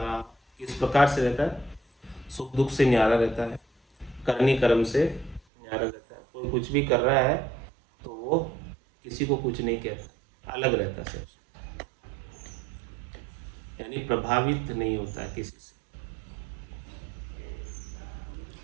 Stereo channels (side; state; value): left; drops out; at 5.4 s